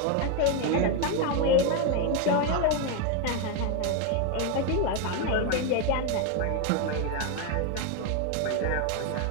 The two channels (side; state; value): both; different; correlation 0.01